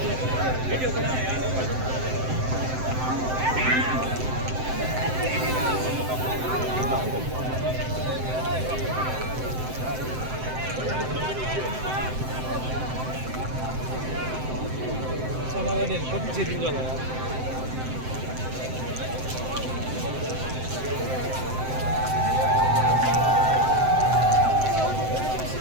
कति चेतिन्छ होला यार।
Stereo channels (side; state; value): left; late; 7.8 ms